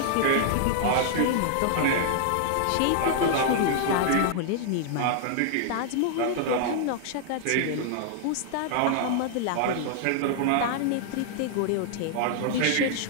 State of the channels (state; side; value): different; both; correlation -0.01